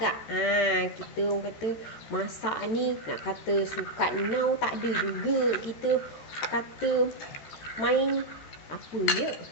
Kita orang kata masak ni nak kata sukat now tak ada juga. Kita kata main apa ya,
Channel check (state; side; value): late; right; 13 ms